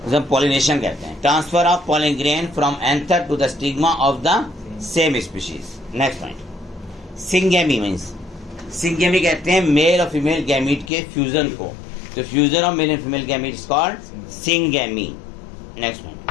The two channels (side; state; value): right; drops out; at 10.9 s